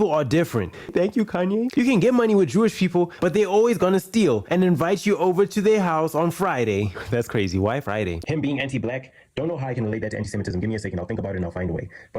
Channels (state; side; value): identical; both; correlation 1.00